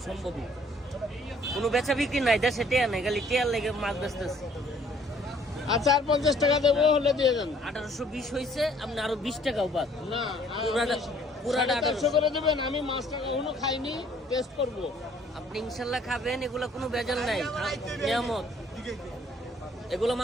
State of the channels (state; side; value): normal; both; correlation 0.60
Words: সম্ভব না, কোনো বেচা বিক্রি নাই, দেশে টেয়া নাই, খালি টেয়ার লেগে মাছ বেচতেছে। আচ্ছা, আর 50 টাকা দেবো, হলে দিয়ে দেন। 1820 হয়েছে, আপনি আরো 20 টাকাও বাদ। না, পুরাটা 450 করে দেবেন। আমি মাছটা কখনো খাইনি, টেস্ট করব। আপনি ইনশাল্লাহ খাবেন, এগুলা কোনো ভেজাল নাই, নিয়ামত, এগুলো